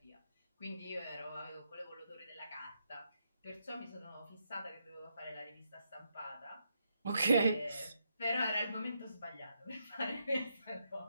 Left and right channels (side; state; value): both; inverted; correlation -0.81